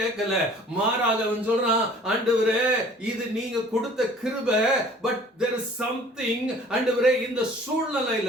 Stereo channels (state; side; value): normal; both; correlation 0.50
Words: மாறாக அவன் சொல்றான், ஆண்டவரே இது நீங்க கொடுத்த கிருபை, பட் there is something, ஆண்டவரே இந்த